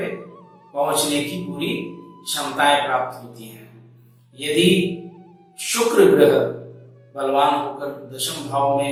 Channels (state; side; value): identical; both; correlation 1.00